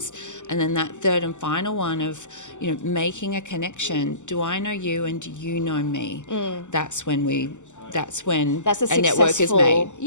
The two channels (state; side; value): late; right; 0.84 ms